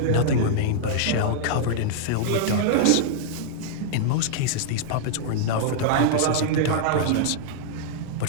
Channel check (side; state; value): both; different; correlation -0.01